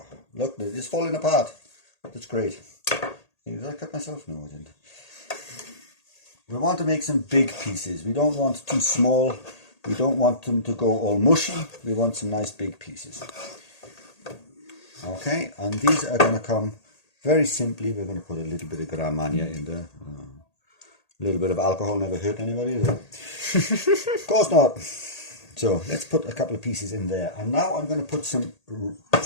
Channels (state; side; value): late; right; 1.8 ms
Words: look, it's falling apart. That's great. Did I cut myself? No, I didn't. We want to make some big pieces. We don't want too small. We don't want them to go all mushy. We want some nice big pieces. Okay, and these are going to come very simply. We're going to put a little bit of Grand Marnier in there. A little bit of alcohol never hurt anybody, is it? Of course not. So let's put a couple of pieces in there. And now I'm going to put some